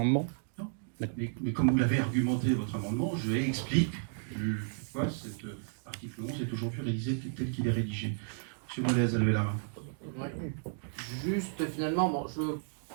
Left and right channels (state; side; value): silent; left; digital silence